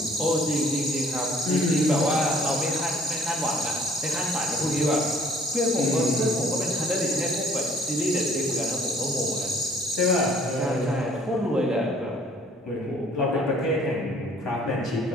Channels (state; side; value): normal; both; correlation 0.58